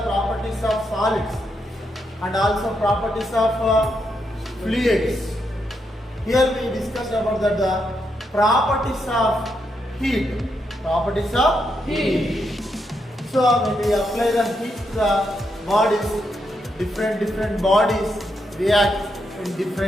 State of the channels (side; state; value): both; normal; correlation 0.81